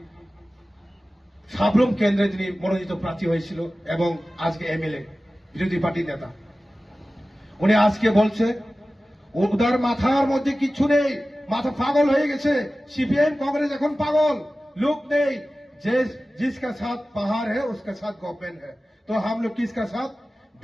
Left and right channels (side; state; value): both; normal; correlation 0.96